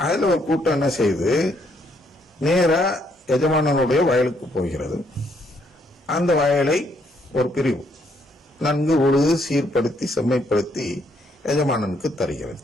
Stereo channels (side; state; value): both; normal; correlation 0.71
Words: அதுல ஒரு கூட்டம் என்ன செய்து நேரா எஜமானனுடைய வயலுக்கு போகிறது. அந்த வயலை ஒரு பிரிவு நன்கு உழுது சீர்படுத்தி செம்மைப்படுத்தி எஜமானனுக்கு தருகிறது.